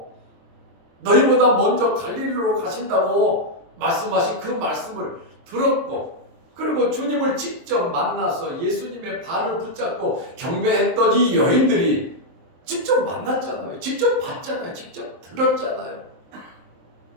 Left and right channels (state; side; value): late; left; 23 ms